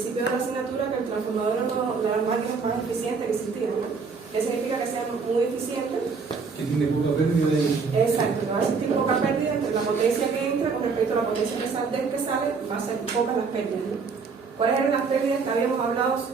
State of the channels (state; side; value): quieter; left; 5.0 dB